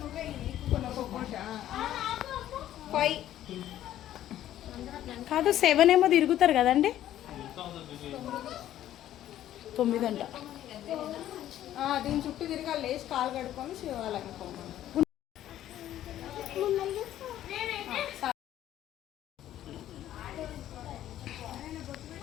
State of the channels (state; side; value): quieter; right; 12.4 dB